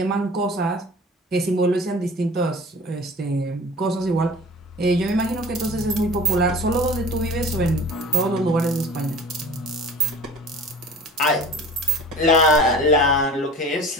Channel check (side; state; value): both; normal; correlation 0.42